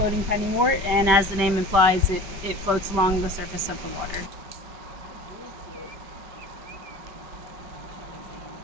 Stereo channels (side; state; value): left; late; 5.2 ms